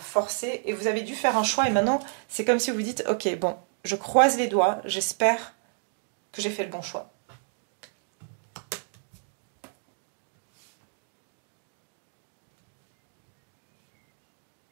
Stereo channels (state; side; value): silent; left; digital silence